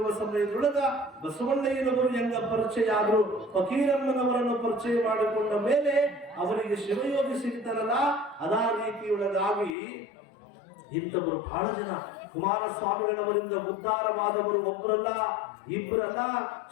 ಸಮಯದೊಳಗ ಬಸವಣ್ಣಯ್ಯನವರು ಹೆಂಗ ಪರಿಚಯ ಆದ್ರು, ಫಕೀರಮ್ಮನವರನ್ನು ಪರಿಚಯ ಮಾಡಿಕೊಂಡ ಮೇಲೆ ಅವರಿಗೆ ಶಿವಯೋಗಿ ಸಿಗ್ತಾರಲ್ಲ, ಅದೇ ರೀತಿಯೊಳಗಾಗಿ ಇಂಥವರು ಬಹಳ ಜನ ಕುಮಾರಸ್ವಾಮಿಗಳವರಿಂದ ಉದ್ಧಾರವಾದವರು ಒಬ್ಬರಲ್ಲ, ಇಬ್ಬರಲ್ಲ.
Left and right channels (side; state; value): right; drops out; at 9.7 s